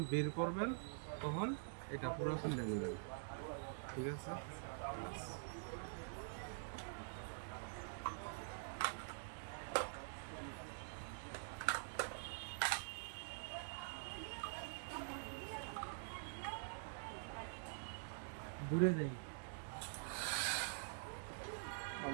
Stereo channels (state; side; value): silent; left; digital silence